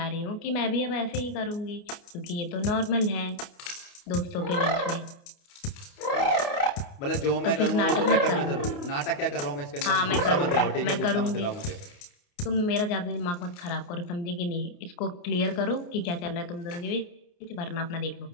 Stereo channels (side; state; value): right; late; 29 ms